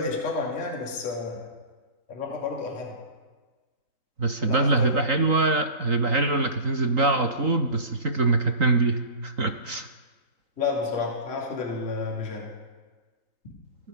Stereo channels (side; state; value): left; late; 3.9 ms